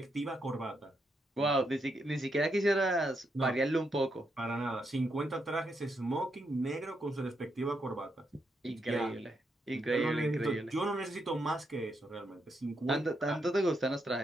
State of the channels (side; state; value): both; normal; correlation 0.80